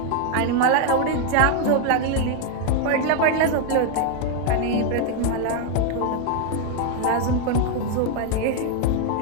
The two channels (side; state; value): both; different; correlation 0.00